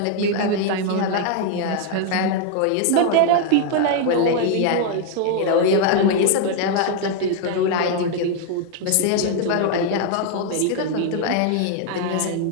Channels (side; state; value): both; different; correlation 0.00